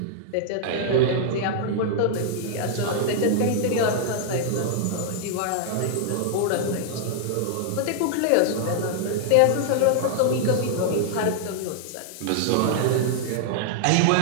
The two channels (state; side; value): different; both; correlation -0.01